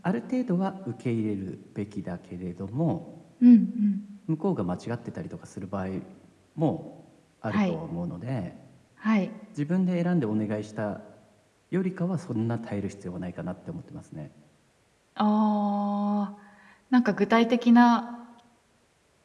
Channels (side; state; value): both; identical; correlation 1.00